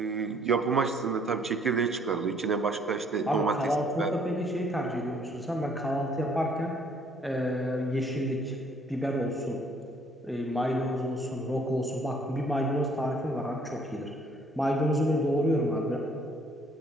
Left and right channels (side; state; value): both; normal; correlation 0.62